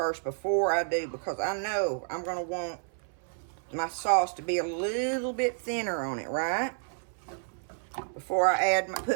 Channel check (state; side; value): silent; left; 58 dB below the other